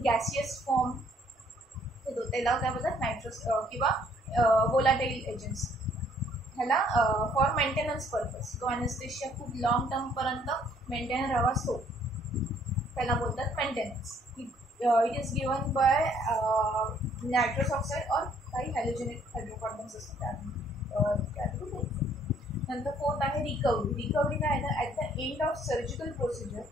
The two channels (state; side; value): normal; both; correlation 0.63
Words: गॅसियस फॉर्म देतो. त्याला काय बोलतात नायट्रस किंवा वोलाटाईल एजंट्स ह्याला फॉर मेंटेनन्स पर्पज तो ॲनेस्थेशिया खूप लॉंग टर्मपर्यंत मेंटेन राहावा असतो त्याला बोलतात maintenance. It is given by nitrous oxide और काही हॅलोजेनेट हायड्रोकार्बन्स असतात त्यातून. नंतर फोर्थ आहे रिकव्हरी. रिकव्हरी काय आहे, at the end of surgical procedure